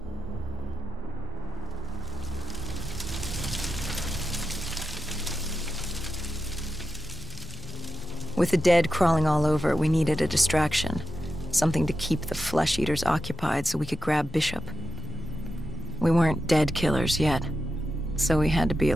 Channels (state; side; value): normal; both; correlation 0.88